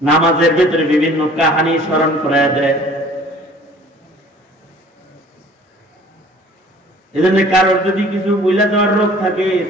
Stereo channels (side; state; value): both; normal; correlation 0.51